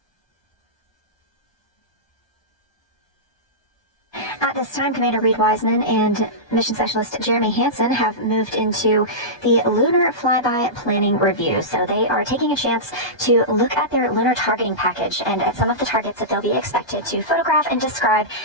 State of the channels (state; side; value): late; right; 1.2 ms